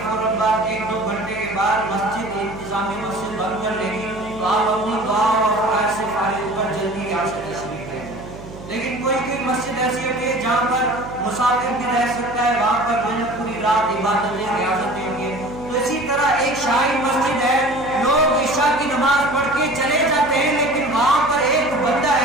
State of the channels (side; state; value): right; noise; hum, 15 dB below the sound